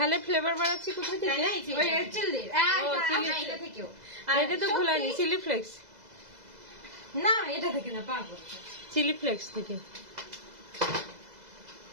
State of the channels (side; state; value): left; late; 2.0 ms